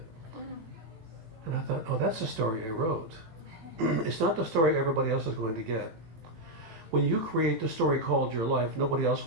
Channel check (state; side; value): late; left; 18 ms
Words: And I thought, oh, that's the story I wrote. It's not the story everybody else is going to get. When you create the story called your life, nobody else